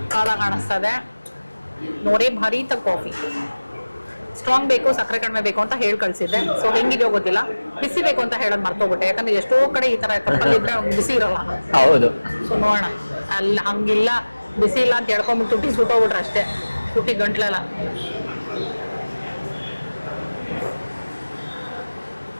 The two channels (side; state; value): both; inverted; correlation -1.00